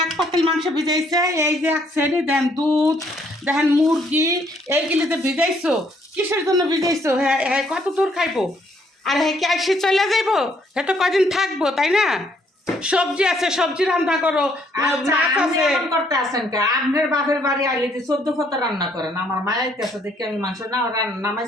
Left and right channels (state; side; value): normal; both; correlation 0.67